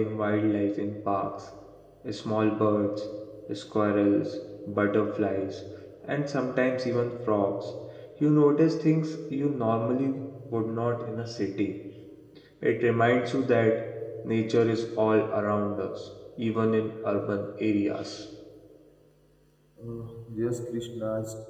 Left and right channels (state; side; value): identical; both; correlation 1.00